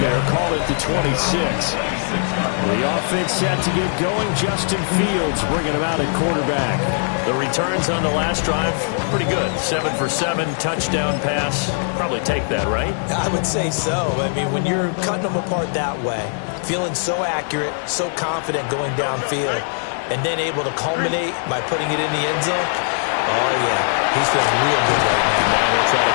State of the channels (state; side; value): silent; right; 62 dB below the other